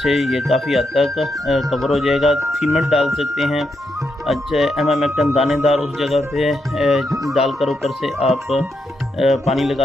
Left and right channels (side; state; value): both; normal; correlation 0.82